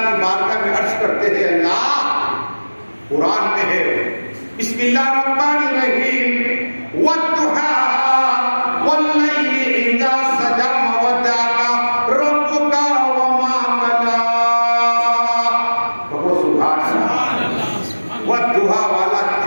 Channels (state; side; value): inverted; both; correlation -1.00